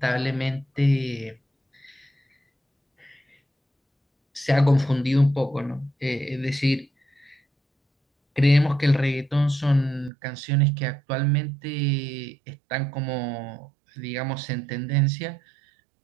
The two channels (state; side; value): drops out; left; at 10.1 s